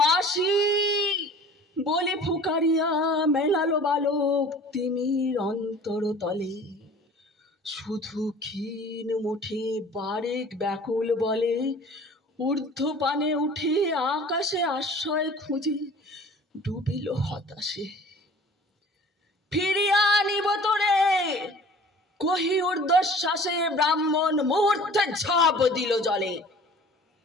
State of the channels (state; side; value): normal; both; correlation 0.46